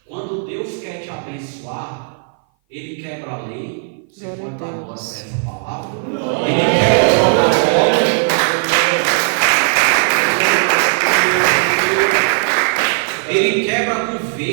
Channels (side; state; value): left; silent; 58 dB below the other